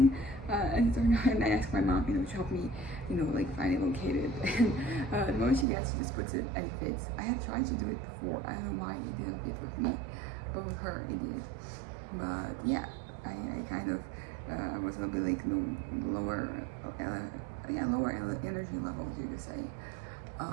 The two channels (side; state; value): left; drops out; at 5.7 s